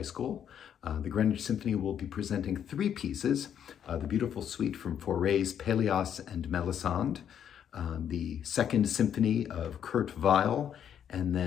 School. The Greenwich Symphony will be presenting three pieces, the beautiful suite from Fauré's Pelléas and Mélisande, the Second Symphony of Weill, and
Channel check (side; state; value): right; quieter; 9.0 dB